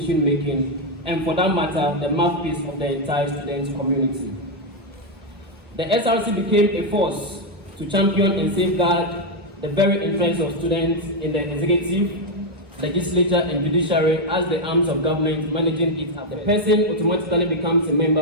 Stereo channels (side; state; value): both; normal; correlation 0.02